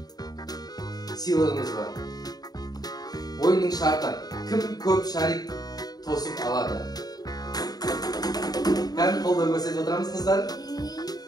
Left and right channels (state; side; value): late; right; 0.19 ms